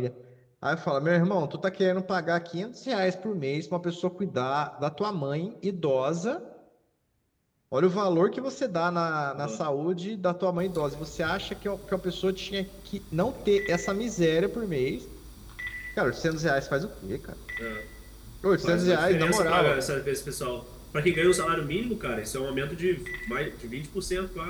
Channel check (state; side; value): identical; both; correlation 1.00